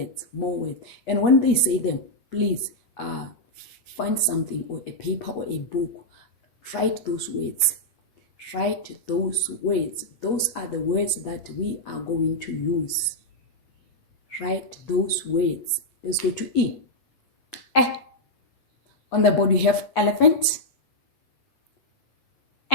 More words. And when they say them, please find something or a paper or a book. Write those words. Write those words. Those are the words that we are going to use. Write those words. Let's go to E. Eh. On the board we have elephant.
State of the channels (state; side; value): late; right; 8.2 ms